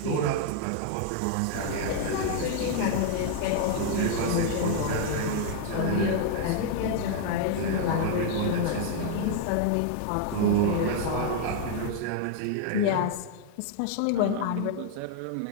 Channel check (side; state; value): both; different; correlation -0.01